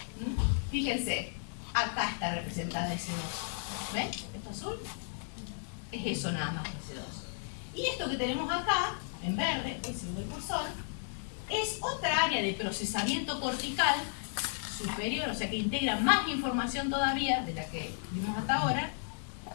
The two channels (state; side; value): silent; right; digital silence